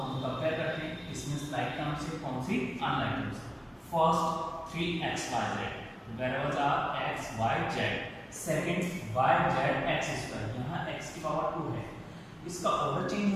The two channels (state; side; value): identical; both; correlation 1.00